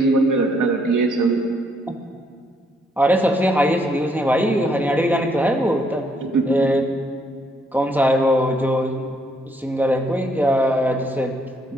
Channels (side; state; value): both; normal; correlation 0.70